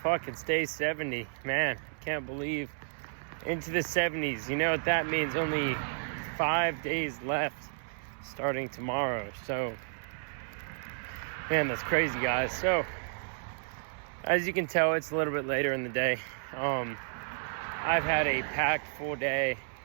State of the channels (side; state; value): left; silent; 56 dB below the other